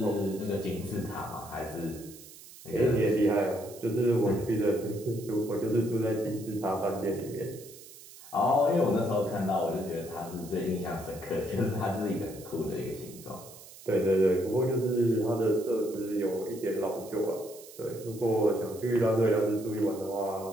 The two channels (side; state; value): right; noise; hiss, 18 dB below the sound